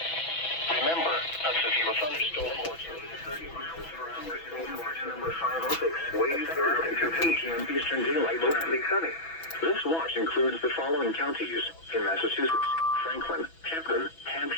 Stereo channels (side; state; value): right; late; 6.1 ms